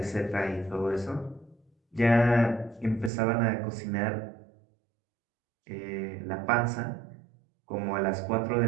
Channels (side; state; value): left; drops out; at 3.1 s